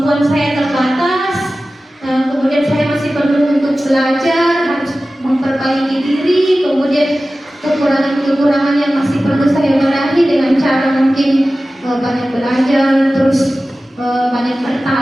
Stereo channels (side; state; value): both; normal; correlation 0.95